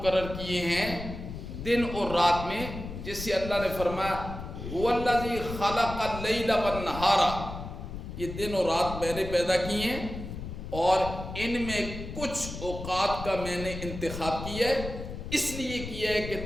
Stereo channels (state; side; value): noise; left; rumble, 9 dB below the sound